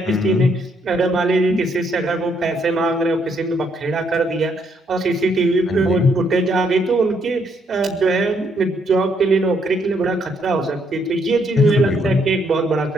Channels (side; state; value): both; normal; correlation 0.72